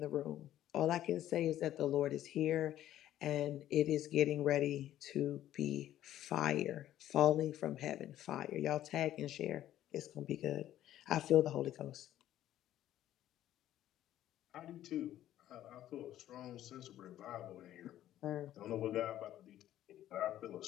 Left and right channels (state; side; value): quieter; right; 12.6 dB